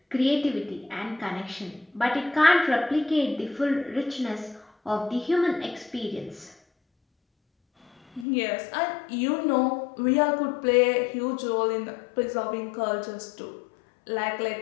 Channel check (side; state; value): right; drops out; at 8.2 s